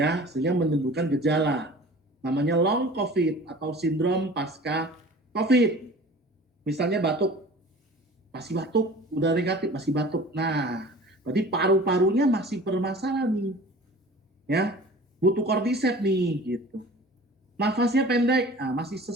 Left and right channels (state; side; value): normal; both; correlation 0.43